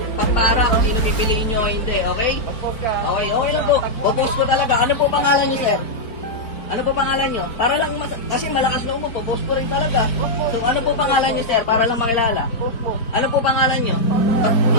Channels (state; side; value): late; right; 4.4 ms